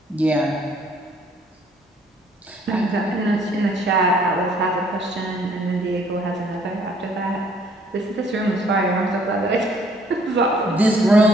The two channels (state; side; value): normal; both; correlation 0.62